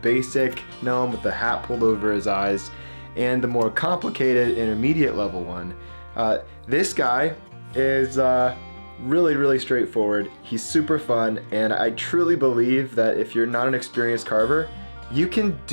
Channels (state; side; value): inverted; both; correlation -1.00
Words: basic gnome with the hat pulled over his eyes and the more complicated intermediate level one. This guy is really straightforward. He's super fun, and I truly believe that if you're not an experienced carver, you can